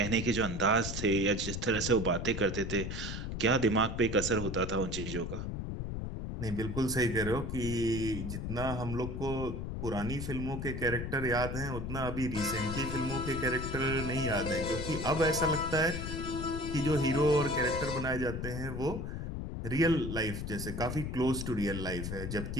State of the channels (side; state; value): left; noise; rumble, 5 dB below the sound